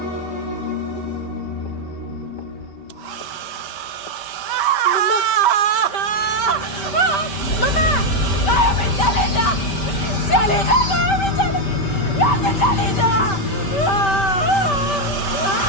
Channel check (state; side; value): late; right; 5.1 ms